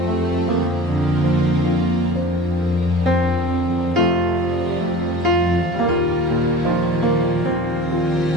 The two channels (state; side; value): normal; both; correlation 0.39